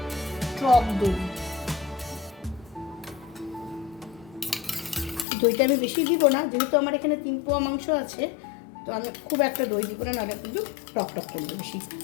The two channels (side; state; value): right; drops out; at 5.2 s